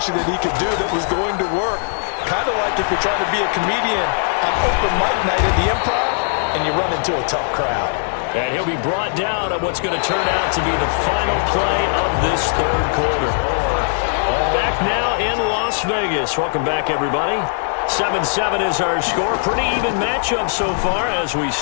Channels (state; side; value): silent; right; digital silence